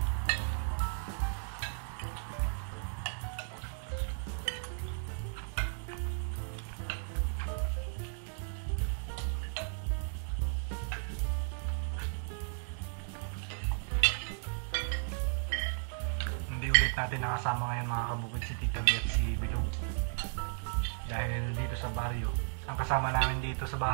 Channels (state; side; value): silent; left; 55 dB below the other